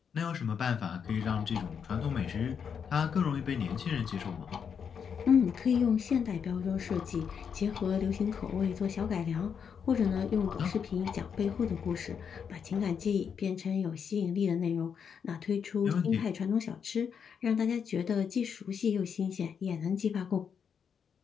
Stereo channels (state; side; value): quieter; right; 7.0 dB